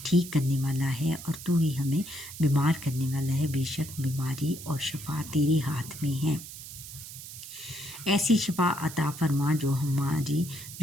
ٹھیک کرنے والا ہے، اور تو ہی ہمیں بیمار کرنے والا ہے۔ بے شک بیماری اور شفا تیرے ہاتھ میں ہے۔ ایسی شفا عطا فرما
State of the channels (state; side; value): noise; right; hiss, 13 dB below the sound